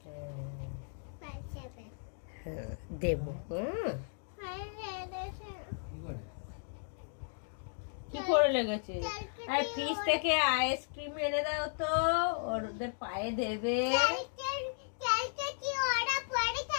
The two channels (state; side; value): silent; right; digital silence